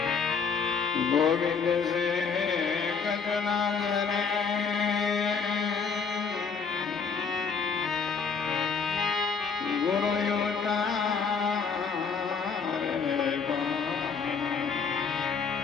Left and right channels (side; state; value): right; quieter; 5.6 dB